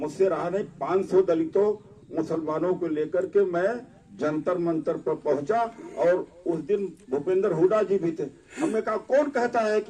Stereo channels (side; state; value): both; identical; correlation 1.00